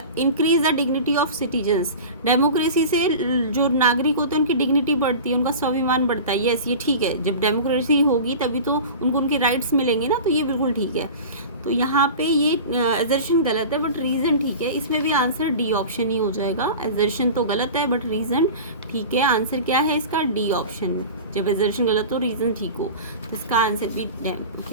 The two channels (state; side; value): inverted; both; correlation -0.34